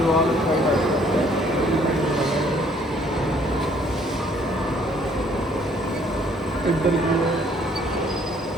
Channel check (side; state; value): both; normal; correlation 0.62